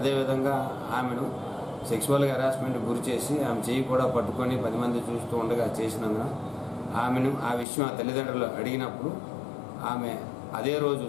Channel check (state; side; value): drops out; right; at 7.7 s